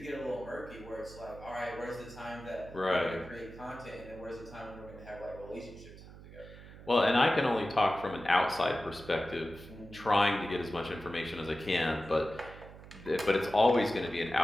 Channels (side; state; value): right; noise; hum, 17 dB below the sound